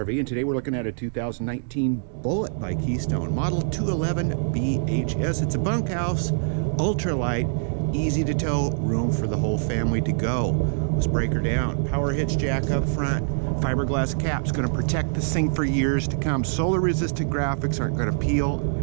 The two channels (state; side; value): silent; left; digital silence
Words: and today we're looking at a 2019 Bullet by Keystone, model 211 BHS. It's a bunkhouse, ultralight, easy to tow, room for the whole family to go. Let's break her down. Power hitch jack up front, fiberglass cap's going to protect this thing for years to come. Solar resistant graphics aren't going to peel